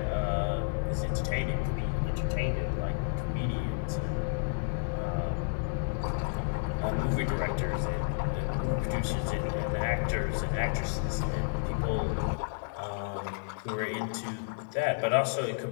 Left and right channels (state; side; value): silent; right; digital silence